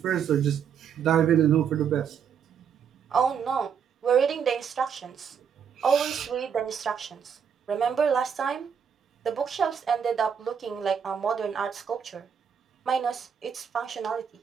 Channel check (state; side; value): quieter; left; 7.4 dB